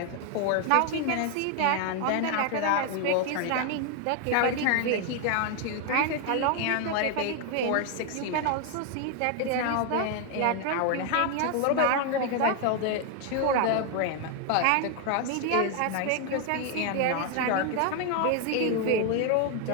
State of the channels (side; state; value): both; different; correlation 0.00